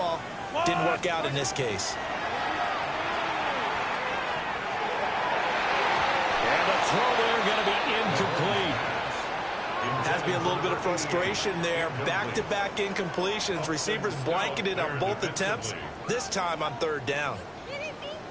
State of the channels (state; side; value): identical; both; correlation 1.00